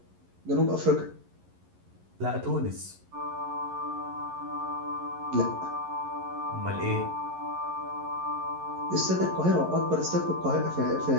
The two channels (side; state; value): left; late; 11 ms